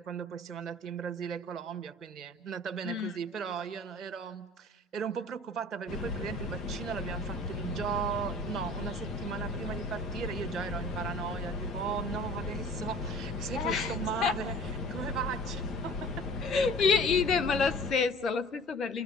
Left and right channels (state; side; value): normal; both; correlation 0.46